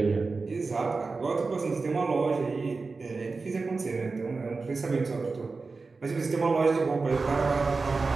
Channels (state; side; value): quieter; left; 4.1 dB